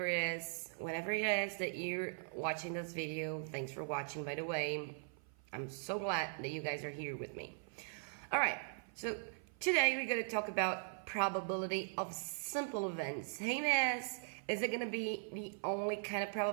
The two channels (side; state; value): left; silent; 51 dB below the other